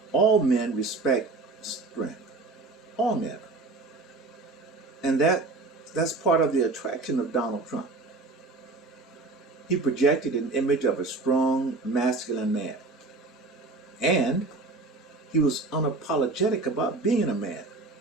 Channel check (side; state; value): left; quieter; 3.5 dB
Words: all men respect strength. All men. And that's part of the attraction of Donald Trump. He projected an image of a strong, masculine man. And he was unapologetic about being a man.